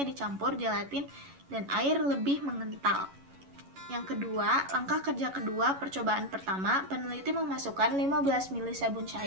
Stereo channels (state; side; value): late; left; 11 ms